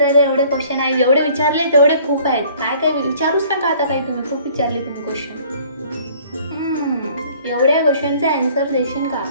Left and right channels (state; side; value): inverted; both; correlation -0.54